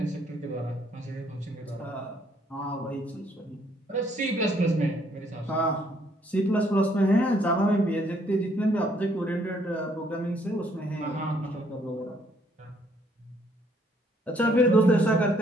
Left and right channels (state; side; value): normal; both; correlation 0.67